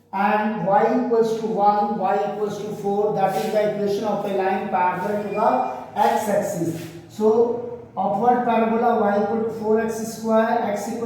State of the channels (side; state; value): both; identical; correlation 1.00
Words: and y equals to 1, y equals to 4, that is the equation of a line parallel to the x-axis. So upward parabola y equal to 4x square, x